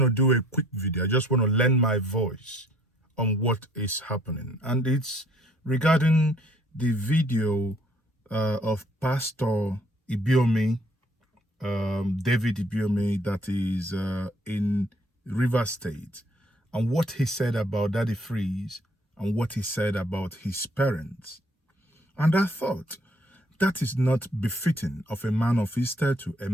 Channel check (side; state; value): both; normal; correlation 0.62